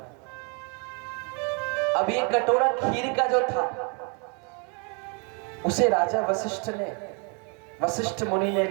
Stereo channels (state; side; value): quieter; left; 35.6 dB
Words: अब ये कटोरा खीर का जो था उसे राजा वशिष्ठ मुनि ने